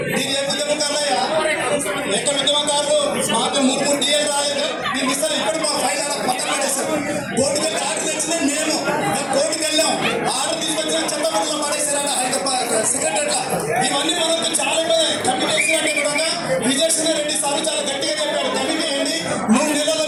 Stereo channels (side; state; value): both; identical; correlation 1.00